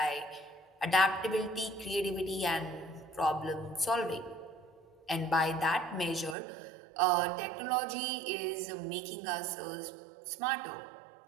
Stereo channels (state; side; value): drops out; left; at 6.4 s